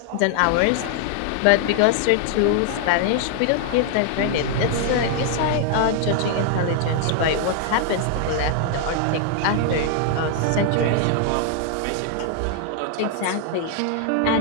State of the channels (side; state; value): both; different; correlation 0.00